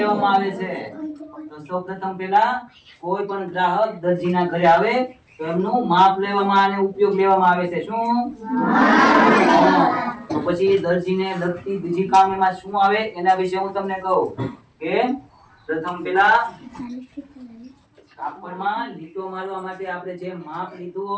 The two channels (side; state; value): both; identical; correlation 1.00